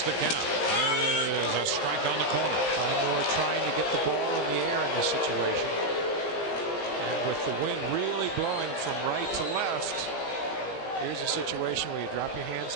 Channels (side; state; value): right; late; 17 ms